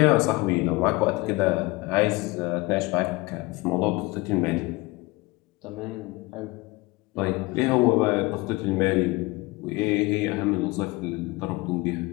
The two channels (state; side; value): quieter; right; 22.8 dB